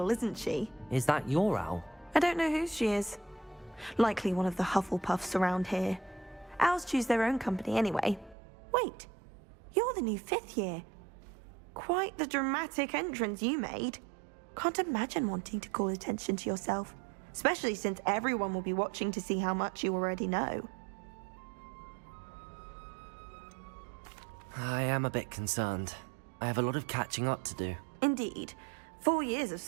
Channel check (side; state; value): left; drops out; at 8.3 s